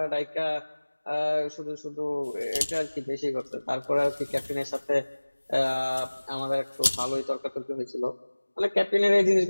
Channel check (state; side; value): inverted; both; correlation -1.00